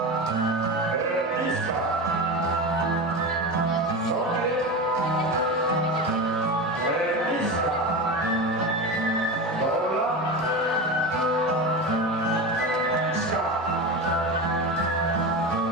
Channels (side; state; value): both; normal; correlation 0.23